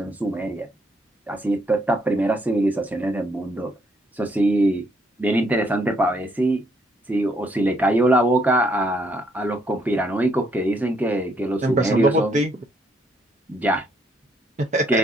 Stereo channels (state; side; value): normal; both; correlation 0.71